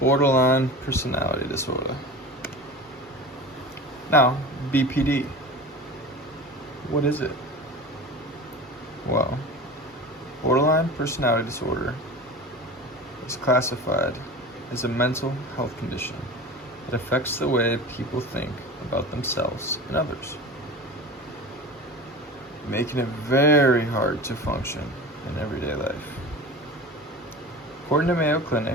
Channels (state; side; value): normal; both; correlation 0.33